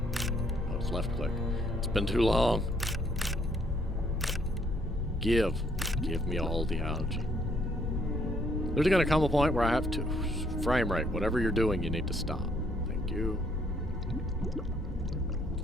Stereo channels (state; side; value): normal; both; correlation 0.68